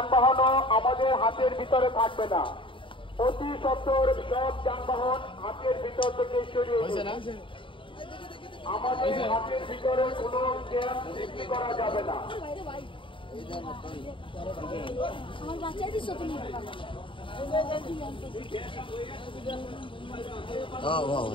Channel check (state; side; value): late; right; 0.25 ms